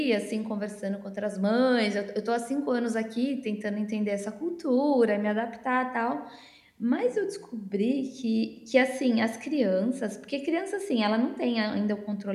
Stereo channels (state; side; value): identical; both; correlation 1.00